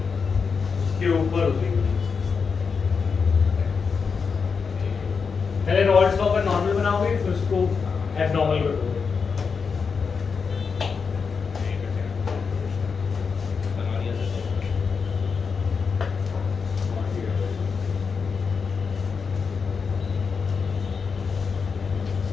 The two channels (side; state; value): right; quieter; 5.5 dB